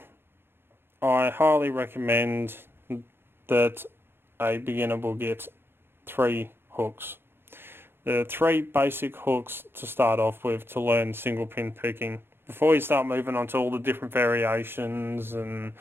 I highly recommend that a beginner will get 3 hooks. There are 3 basic hooks to start off with to learn single pin picking. Before you start moving on to all the different variations and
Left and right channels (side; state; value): left; late; 0.11 ms